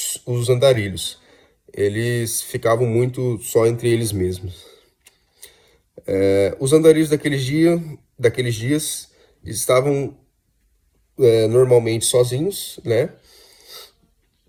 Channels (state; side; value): identical; both; correlation 1.00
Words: andarilhos. Eles ficavam muito só entre eles mesmos. Os andarilhos daqueles dias estavam normalmente sozinhos, né?